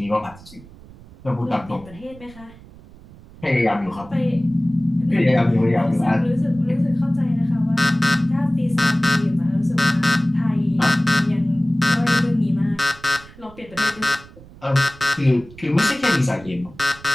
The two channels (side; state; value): right; noise; rumble, 21 dB below the sound